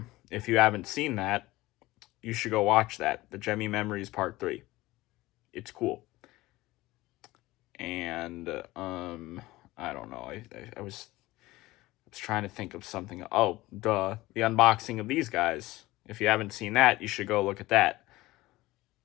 if you haven't seen that, you should go watch that. The Gemmy Memories Part 3. It's cool. And, I don't know. I was trying to think of something. Oh, duh. The unboxing of these guys. If you haven't seen that, you should go look at that.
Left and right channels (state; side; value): quieter; right; 18.7 dB